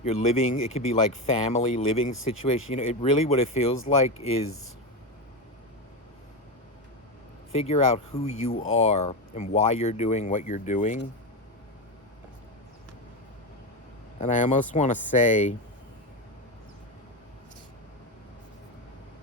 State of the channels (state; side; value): normal; both; correlation 0.15